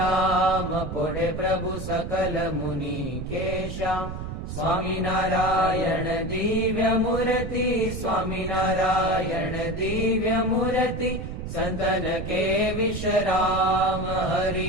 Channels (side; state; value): right; noise; rumble, 6 dB below the sound